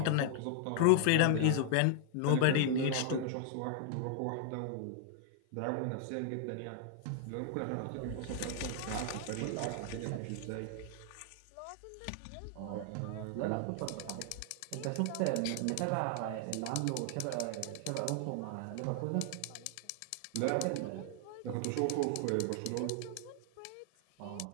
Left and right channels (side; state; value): both; different; correlation 0.00